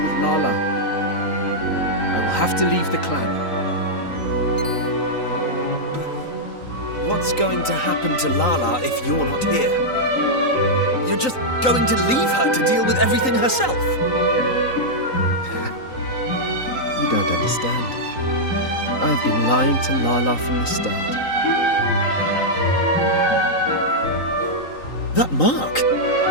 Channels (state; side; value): late; right; 3.9 ms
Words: Lala. I will have to leave the clan. But what's going to happen to Lala if you're not here? You're just going to leave her to deal with everything herself? You don't understand. I've been lying to Lala from the start. That mark?